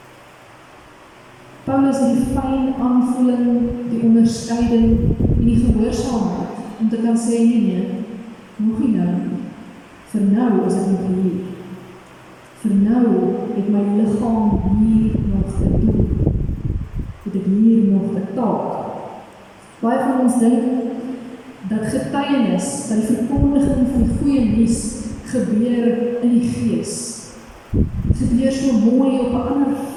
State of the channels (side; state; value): both; identical; correlation 1.00